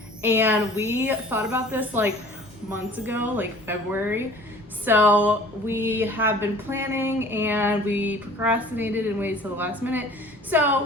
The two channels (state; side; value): normal; both; correlation 0.47